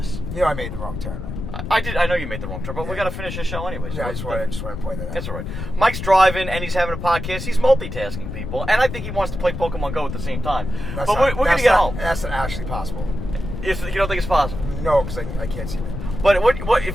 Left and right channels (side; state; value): left; noise; rumble, 7 dB below the sound